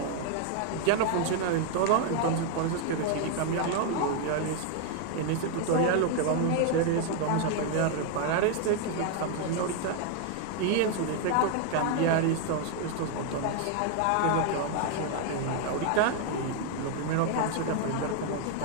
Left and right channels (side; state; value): both; different; correlation 0.00